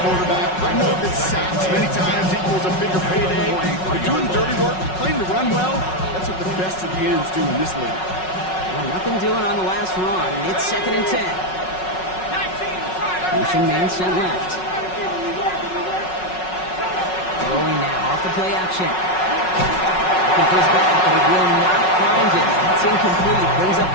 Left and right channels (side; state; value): right; late; 5.4 ms